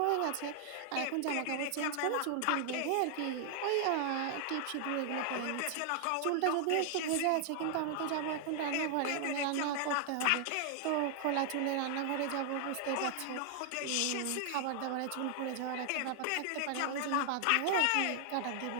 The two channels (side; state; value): both; different; correlation 0.00